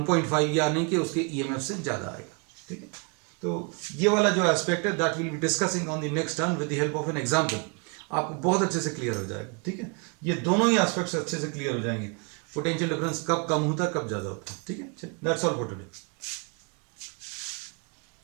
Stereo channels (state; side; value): quieter; left; 34.3 dB